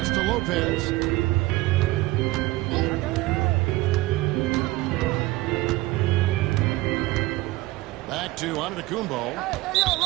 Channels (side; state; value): left; quieter; 19.4 dB